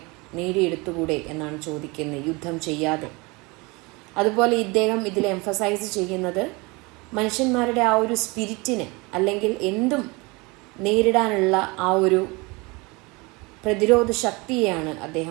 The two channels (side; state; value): left; quieter; 26.1 dB